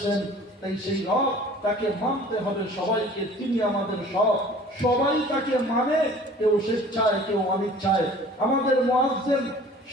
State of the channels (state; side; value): normal; both; correlation 0.48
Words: তাই সেই রব, তাকে মানতে হবে সবাইকে। তিনি আমাদের সব, সবাই তাকে মানে, কেউ স্বেচ্ছায় কেউ অনিচ্ছায়। আমাদের মুয়াজ্জিন